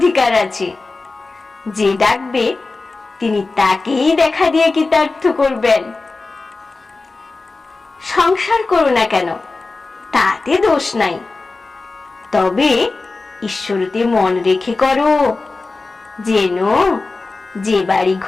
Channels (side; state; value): right; quieter; 3.7 dB